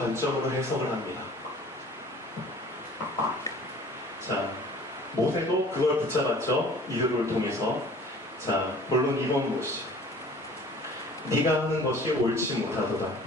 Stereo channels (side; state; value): both; normal; correlation 0.49